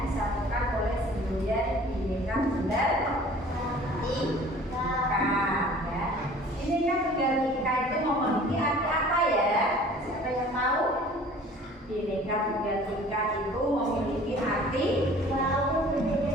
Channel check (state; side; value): normal; both; correlation 0.48